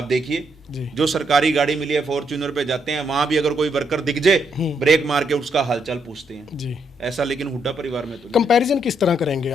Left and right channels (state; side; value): normal; both; correlation 0.76